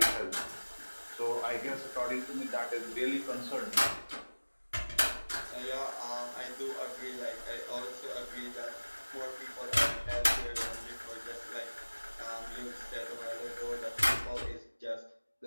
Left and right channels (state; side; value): inverted; both; correlation -1.00